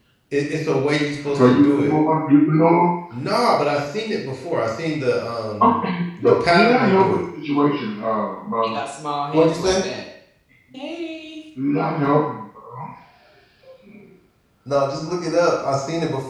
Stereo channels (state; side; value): identical; both; correlation 1.00